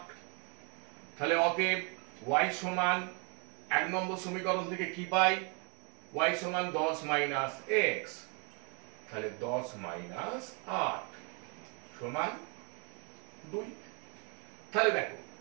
তাহলে অতএব y সমান 1 নম্বর সমীকরণ থেকে কি পাই? y সমান 10 মাইনাস x, তাহলে 10 মাইনাস 8 সমান 2। তাহলে দেখো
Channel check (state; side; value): quieter; left; 35.1 dB